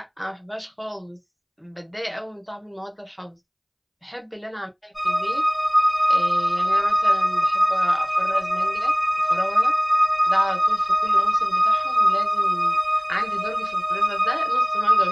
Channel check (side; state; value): both; identical; correlation 1.00